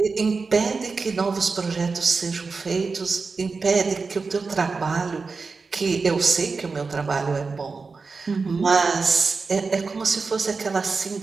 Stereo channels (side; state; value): left; quieter; 4.5 dB